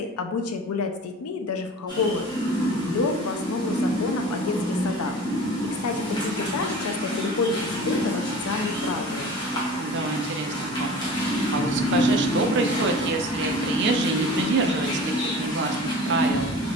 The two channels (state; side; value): normal; both; correlation 0.39